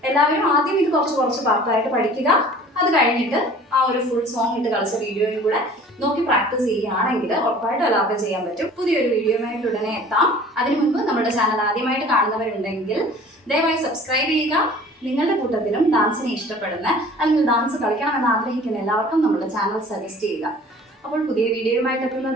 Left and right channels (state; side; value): normal; both; correlation 0.47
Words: എല്ലാവരും ആദ്യം ഇത് കുറച്ച് പാർട്ടായിട്ട് പഠിക്കുക. അത് കഴിഞ്ഞിട്ട് ആ ഒരു ഫുൾ സോങ് ഇട്ട് കളിച്ച വീഡിയോയും കൂടെ നോക്കി പ്രാക്ടീസ് ചെയ്യുകയാണെങ്കിൽ ഉറപ്പായിട്ടും എല്ലാവർക്കും ചെയ്യാൻ പറ്റും. പുതിയൊരു വീഡിയോയുമായിട്ട് ഉടനെ എത്താം. അതിനു മുൻപ് നമ്മുടെ ചാനൽ ആദ്യമായിട്ട് കാണുന്നവരുണ്ടെങ്കിൽ ദയവായി സബ്സ്ക്രൈബ് ചെയ്യുക. നിങ്ങളുടെ കൂട്ടത്തിലും ഡാൻസിനെ ഇഷ്ടപ്പെടുന്ന അല്ലെങ്കിൽ ഡാൻസ് കളിക്കണമെന്ന് ആഗ്രഹിക്കുന്ന എല്ലാവർക്കും നമ്മുടെ ചാനൽ സജസ്റ്റ് ചെയ്യുക. അപ്പോൾ പുതിയ വീഡിയോയുമായിട്ട്